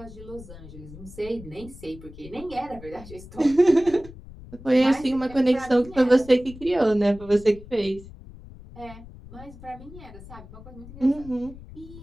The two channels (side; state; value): left; noise; rumble, 17 dB below the sound